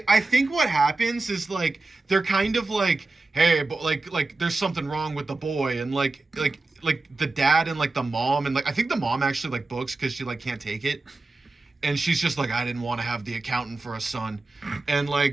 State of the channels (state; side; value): quieter; left; 3.3 dB